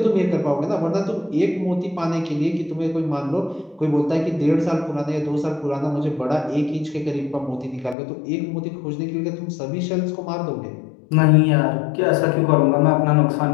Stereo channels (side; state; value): right; drops out; at 8.0 s